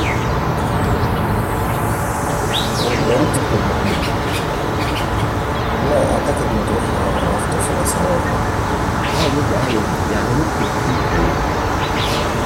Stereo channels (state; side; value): identical; both; correlation 1.00